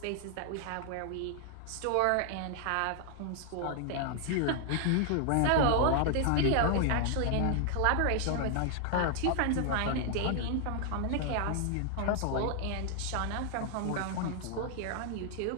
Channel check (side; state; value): both; different; correlation 0.00